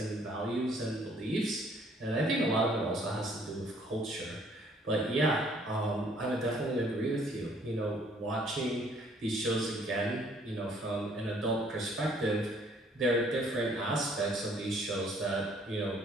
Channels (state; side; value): normal; both; correlation 0.61